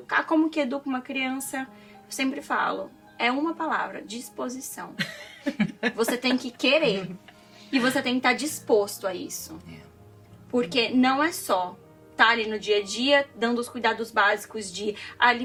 Como que educa uma criança? Eu sempre falo, é uma palavra, disposição. Você tem que querer. E você tem que estar disposto a isso. Porque não é só estar ali no dia a dia, dando os cuidados básicos de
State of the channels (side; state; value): both; identical; correlation 1.00